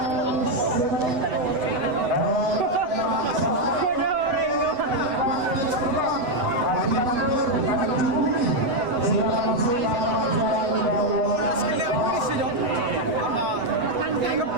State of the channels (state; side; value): late; left; 8.1 ms